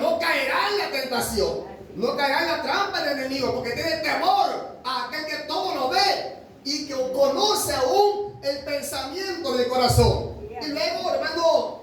caerá en la tentación, no caerá en la trampa del enemigo, porque tiene temor a aquel que todo lo ve y que conoce aún el pensamiento del corazón. Y luego, hermano,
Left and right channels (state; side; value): identical; both; correlation 1.00